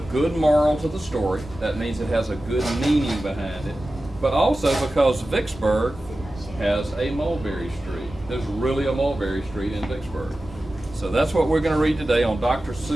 good moral to the story. That means it has a good meaning behind it. But also because Vicksburg has a Mulberry Street. There's really a Mulberry Street in Vicksburg. So that's what we're going to read today on Dr.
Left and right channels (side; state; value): both; normal; correlation 0.94